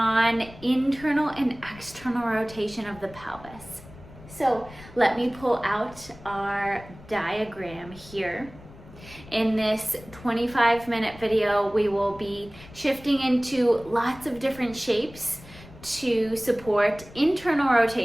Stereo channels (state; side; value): noise; left; rumble, 19 dB below the sound